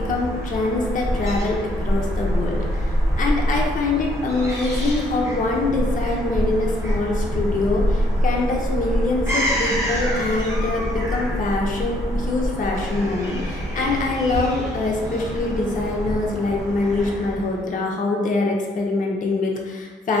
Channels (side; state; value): both; normal; correlation 0.68